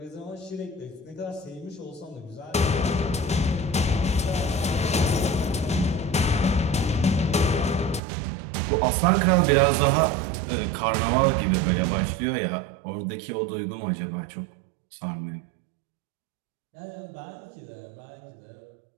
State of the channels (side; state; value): left; drops out; at 8.0 s